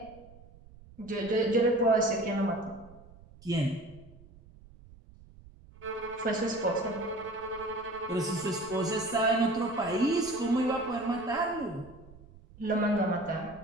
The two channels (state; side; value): noise; right; rumble, 22 dB below the sound